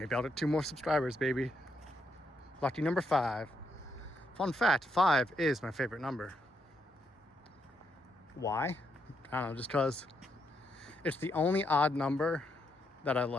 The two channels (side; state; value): both; normal; correlation 0.78